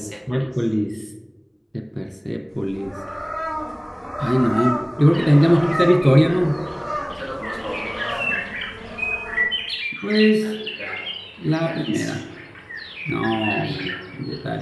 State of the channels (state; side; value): identical; both; correlation 1.00